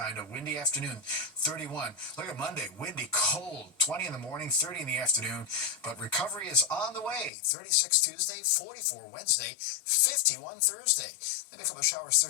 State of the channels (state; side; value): drops out; right; at 7.3 s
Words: a windy afternoon, 31. Look at Monday, windy, cold, 20 in the morning, 30 in the afternoon, but recovery is on the way. 36 Tuesday, 44 Wednesday, 51 Thursday. Maybe a couple of showers